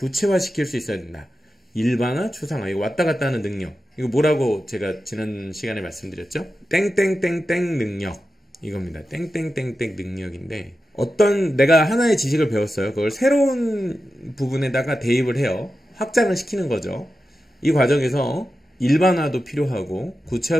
수 있어야 된다. 일반화, 추상화, 이거 왔다 갔다 하는 능력. 이거 뭐라고 제가 지난 시간에 말씀드렸죠? 땡땡땡땡 능력, 이겁니다. 땡땡땡땡 능력인데, 어떤 내가 하나의 지식을 배웠어요. 그걸 새로운 부분에다가 대입을 해요. 확장을 시키는 거죠. 이 과정에서 일반화도 필요하고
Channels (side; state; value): both; normal; correlation 0.91